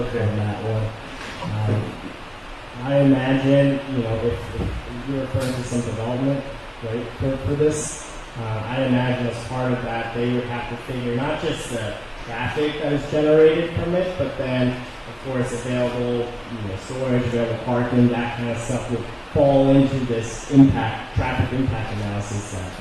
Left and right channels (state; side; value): identical; both; correlation 1.00